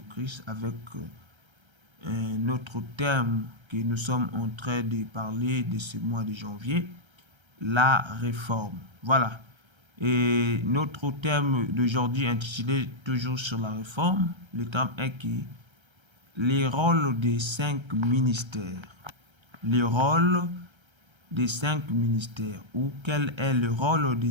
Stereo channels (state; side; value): late; left; 1.3 ms